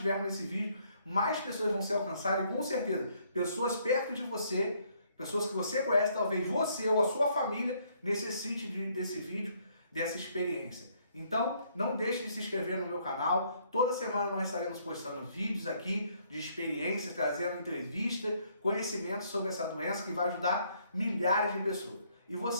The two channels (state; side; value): inverted; both; correlation -0.67